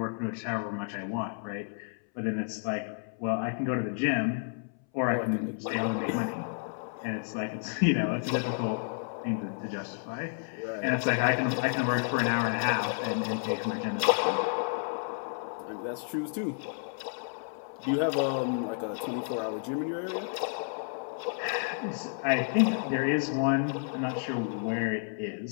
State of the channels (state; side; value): silent; right; 57 dB below the other